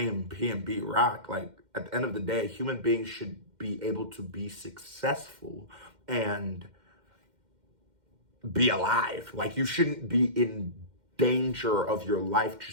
PNB Rock. Like, at the end of the day, human beings should be able to be successful and be alive. Like, you shouldn't be in danger of your life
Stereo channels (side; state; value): left; late; 2.1 ms